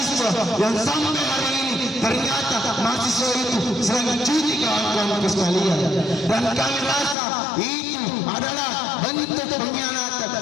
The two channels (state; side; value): drops out; right; at 7.2 s